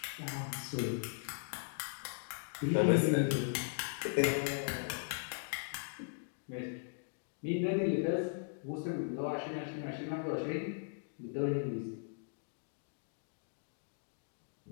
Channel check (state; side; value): silent; right; digital silence